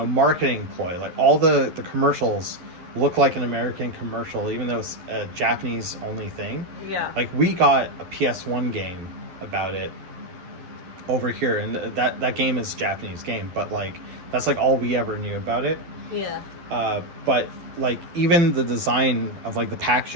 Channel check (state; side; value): late; left; 11 ms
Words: ploy. Like all the commercials look like an American commercial, even though it's a Japanese only thing. Yeah. Like we got a PS1 game about it over here, and that game is a Japanese game, but like that's like all we ever knew about it. Yeah. But like even the design of like the